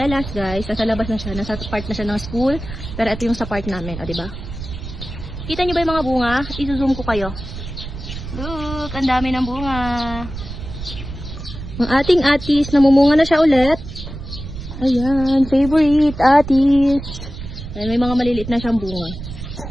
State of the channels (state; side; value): noise; right; rumble, 10 dB below the sound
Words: guys. Nasa labas na siya. Nasa part na siya ng school. Pero ito yung sa part namin. O, diba? Kita nyo ba yung mga bunga? I-zoom ko kayo. Look! Ang dami ng bunga. Ang ating atis. Namumunga na siya ulit. Ayan. Favorite atis. Ayan, may mga maliliit na siyang bunga.